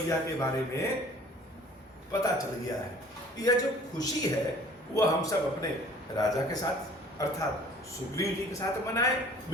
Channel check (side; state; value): both; normal; correlation 0.51